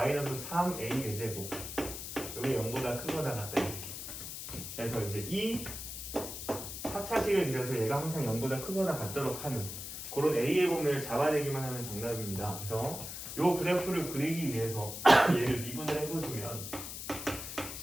3a 4제곱 여기 0보다 크거나 같다 이렇게. 그래서 이제 이 4차식을 그려서 얘가 항상 0보다 크거나 같도록 하는 그런 a의 범위를 잡아내기만 하면 정답입니다. 그래서 이 그래프를 그리기 위해서 얘를 미분을 해보시면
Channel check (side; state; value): left; noise; hiss, 8 dB below the sound